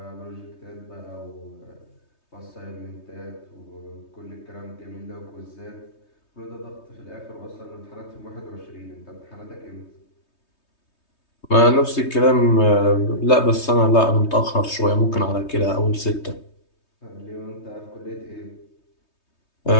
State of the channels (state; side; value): late; right; 3.2 ms